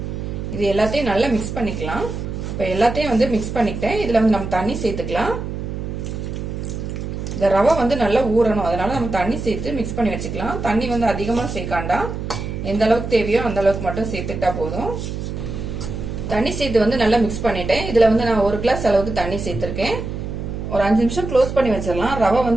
இது எல்லாத்தையும் நல்லா மிக்ஸ் பண்ணிக்கலாம். இப்போ எல்லாத்தையும் வந்து மிக்ஸ் பண்ணிக்கிட்டேன். இதுல வந்து நம்ம தண்ணி சேர்த்துக்கலாம். இந்த ரவை வந்து நல்லா ஊறணும், அதனால நம்ம தண்ணி சேர்த்து மிக்ஸ் பண்ணி வச்சுக்கலாம். தண்ணி வந்து அதிகமா சேர்க்காண்டா, எந்த அளவுக்கு தேவையோ அந்த அளவுக்கு மட்டும் சேர்த்துக்கிட்டா போதும். தண்ணி சேர்த்து வந்து நல்லா மிக்ஸ் பண்ணிட்டேன். இதுல வந்து நான் 1 கிளாஸ் அளவுக்கு தண்ணி சேர்த்திருக்கேன். ஒரு 5 நிமிஷம் க்ளோஸ் பண்ணி வச்சிடலாம். ரவை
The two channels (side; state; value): right; noise; hum, 6 dB below the sound